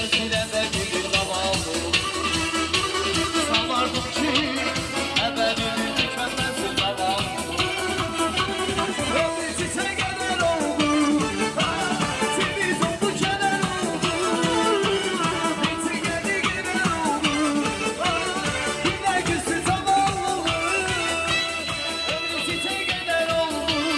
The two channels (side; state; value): both; identical; correlation 1.00